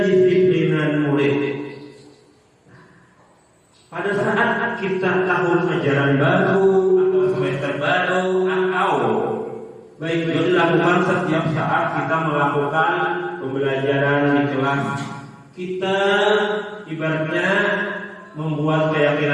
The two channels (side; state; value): both; identical; correlation 1.00